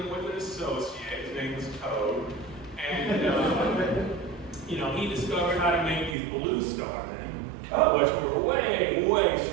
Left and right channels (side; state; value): left; drops out; at 6.2 s